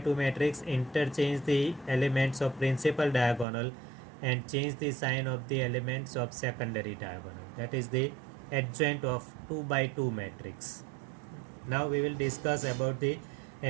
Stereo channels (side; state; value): left; drops out; at 3.5 s